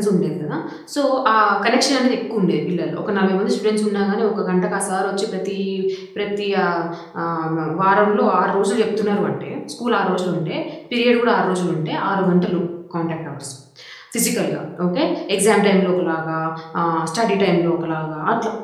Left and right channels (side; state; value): both; identical; correlation 1.00